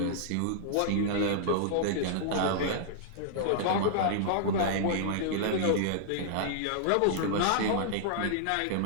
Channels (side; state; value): both; different; correlation -0.01